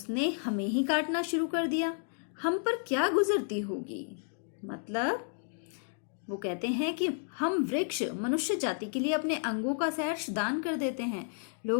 हमें ही काटना शुरू कर दिया, हम पर क्या गुजरती होगी। मतलब वो कहते हैं कि हम वृक्ष मनुष्य जाति के लिए अपने अंगों का सहर्ष दान कर देते हैं।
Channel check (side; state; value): right; silent; 57 dB below the other